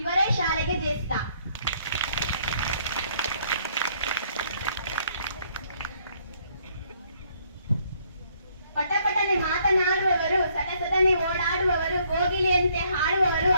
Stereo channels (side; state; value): both; inverted; correlation -0.67